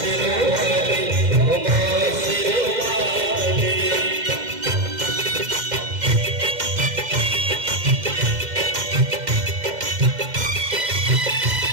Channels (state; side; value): late; left; 2.1 ms